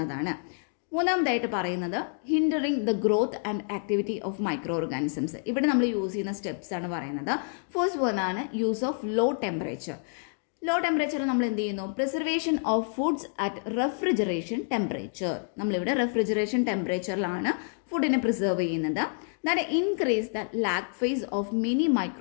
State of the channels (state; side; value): silent; right; 59 dB below the other